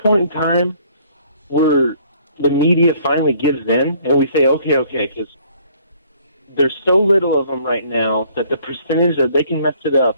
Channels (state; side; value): inverted; both; correlation -0.60